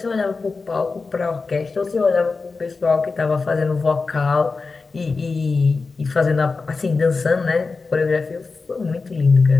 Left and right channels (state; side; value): quieter; right; 4.2 dB